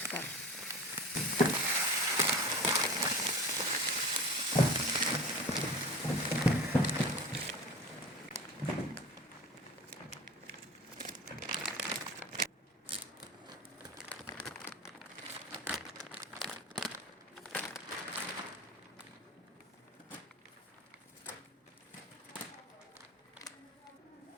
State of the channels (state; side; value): normal; both; correlation 0.36